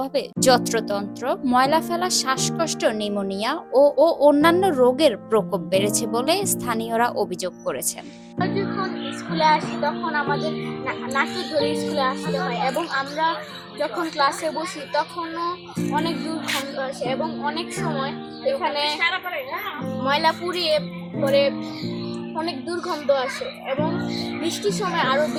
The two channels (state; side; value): identical; both; correlation 1.00